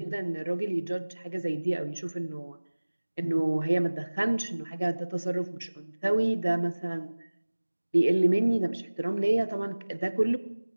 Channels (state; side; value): inverted; both; correlation -1.00